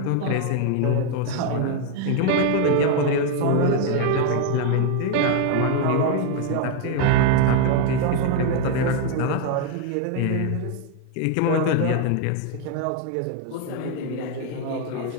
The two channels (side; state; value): both; different; correlation 0.01